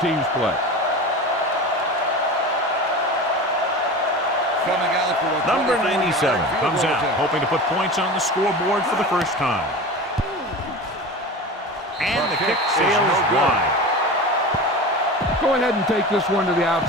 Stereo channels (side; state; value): both; normal; correlation 0.31